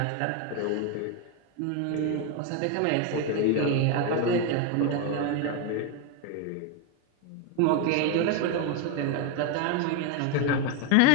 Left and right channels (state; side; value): different; both; correlation 0.02